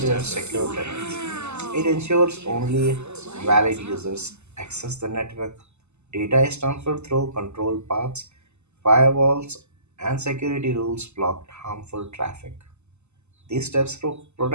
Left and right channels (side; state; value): left; late; 0.82 ms